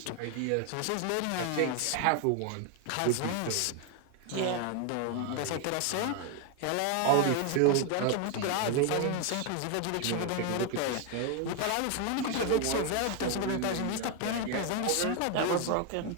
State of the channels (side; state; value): both; different; correlation 0.01